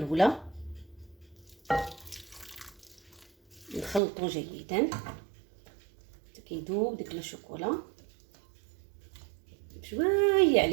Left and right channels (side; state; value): left; drops out; at 4.0 s